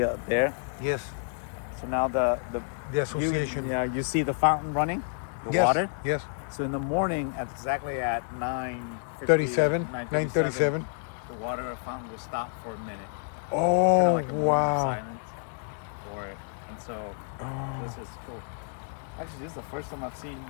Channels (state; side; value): silent; right; digital silence